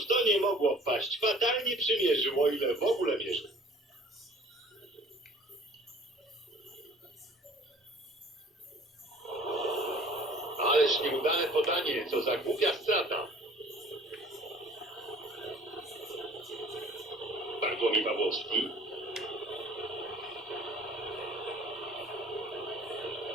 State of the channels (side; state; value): both; normal; correlation 0.51